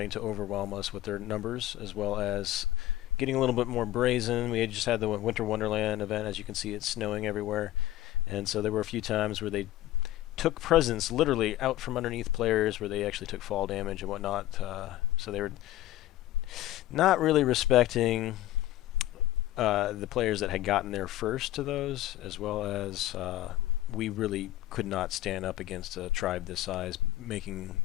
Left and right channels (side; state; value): right; quieter; 14.7 dB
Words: to overwhelm us with their numbers, as well as getting a little bit more brazen. We had just had the Winter Wonderland event. As you can see, it's snowing everywhere. And so there were a few times where they took presents literally out from underneath players, where they actually took fall damage and whatnot. So they were not really respecting the players that had gotten there first to those, as well as we really could not stand up against a tribe this size, making